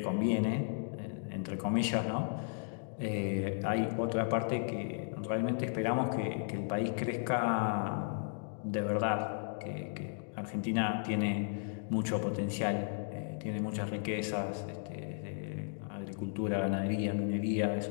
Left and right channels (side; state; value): right; silent; digital silence